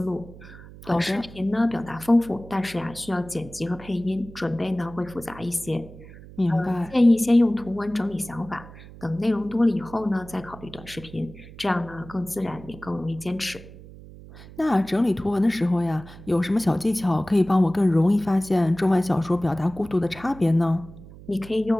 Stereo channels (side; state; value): right; noise; hum, 18 dB below the sound